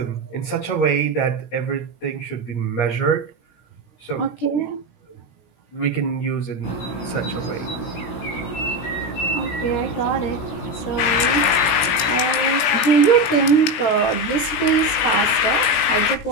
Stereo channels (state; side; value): late; right; 17 ms